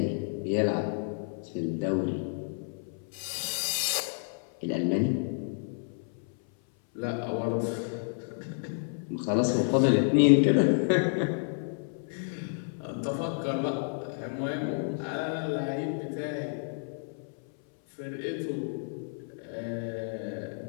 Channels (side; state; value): right; silent; 58 dB below the other